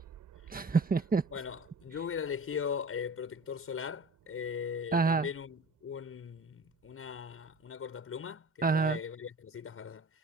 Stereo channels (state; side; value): normal; both; correlation 0.41